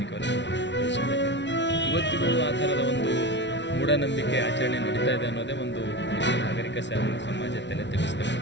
ದೇಶದಲ್ಲಿ ಇವತ್ತಿಗೂ ಆ ಥರದ ಒಂದು ಮೂಢನಂಬಿಕೆ ಆಚರಣೆ ನಡೀತಾ ಇದೆ ಅನ್ನೋದೇ ಒಂದು ನಾಗರಿಕ ಸಮಾಜ ತಲೆ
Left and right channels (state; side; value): late; right; 0.51 ms